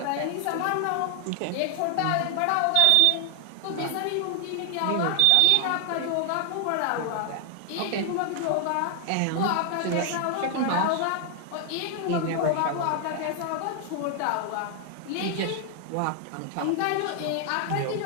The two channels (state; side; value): different; both; correlation 0.00